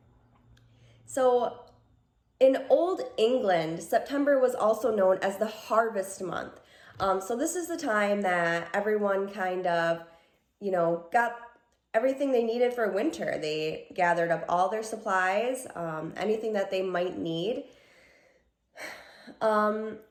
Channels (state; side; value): identical; both; correlation 1.00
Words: So in Old England, September was also known as the harvest month. So this is the time that everyone kind of, got everything they needed for winter. They gathered up all their supplies, anything that they might need.